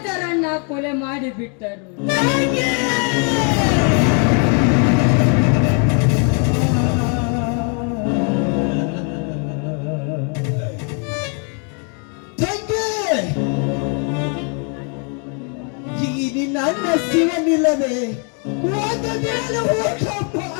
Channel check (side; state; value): right; quieter; 39.2 dB